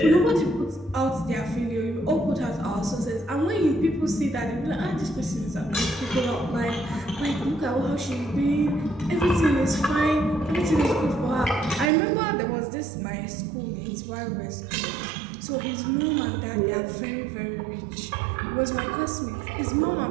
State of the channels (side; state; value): left; drops out; at 11.9 s